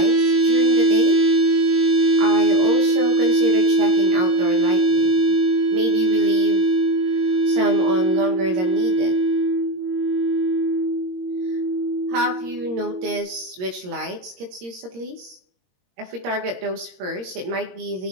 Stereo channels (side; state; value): left; late; 22 ms